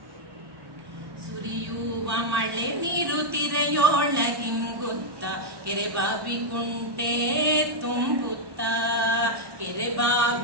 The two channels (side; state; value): left; late; 1.1 ms